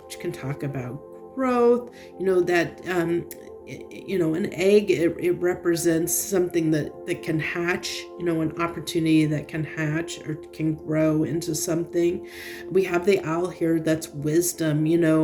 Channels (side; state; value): both; identical; correlation 1.00